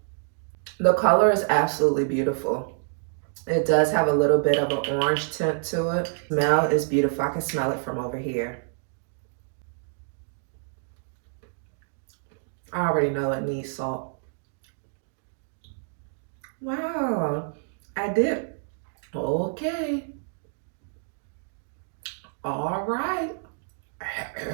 The color is absolutely beautiful. It does have a little bit of an orange tint to it. Smell is beautiful. I can smell it from over here. I already know it needs salt. Wow, I did. Okay. All right.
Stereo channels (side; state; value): left; silent; digital silence